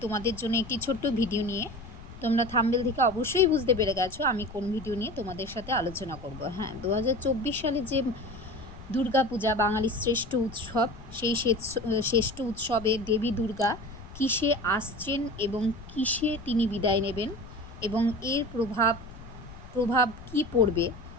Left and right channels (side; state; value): left; noise; rumble, 16 dB below the sound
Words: তোমাদের জন্য একটি ছোট্ট ভিডিও নিয়ে। তোমরা থাম্বনেল থেকে অবশ্যই বুঝতে পেরে গেছো আমি কোন ভিডিও নিয়ে তোমাদের সাথে আলোচনা করব। হ্যাঁ, 2024 সালে যে দুর্গাপূজা বাঙালির শ্রেষ্ঠ উৎসব, সেই শ্রেষ্ঠ উৎসবে দেবী দুর্গা কিসে আসছেন এবং কিসে তিনি বিদায় নেবেন এবং এর প্রভাব কি পড়বে,